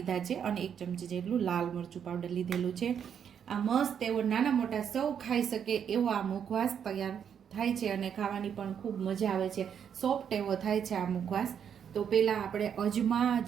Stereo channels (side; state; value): left; quieter; 8.1 dB